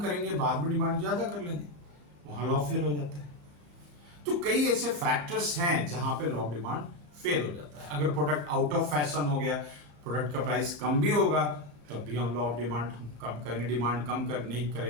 बाद में डिमांड ज्यादा कर लेंगे, वहां लॉ फेल हो जाता है। तो कई ऐसे फैक्टर्स हैं जहां पे लॉ ऑफ डिमांड फेल हो जाता है। अगर प्रोडक्ट आउट ऑफ फैशन हो गया, प्रोडक्ट का प्राइस कम भी होगा, तब भी हम लॉ ऑफ डिमांड कम करेंगे, डिमांड कम कर नहीं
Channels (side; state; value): left; late; 34 ms